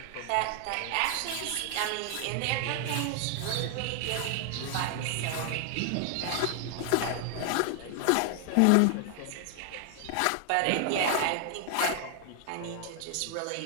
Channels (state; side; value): different; both; correlation 0.00